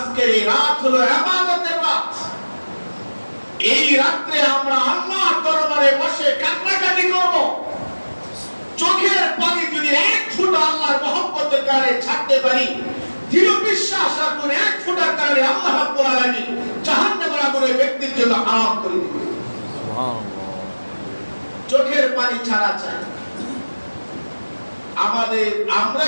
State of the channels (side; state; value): both; inverted; correlation -1.00